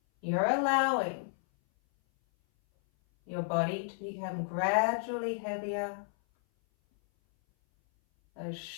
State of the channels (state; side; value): silent; right; 56 dB below the other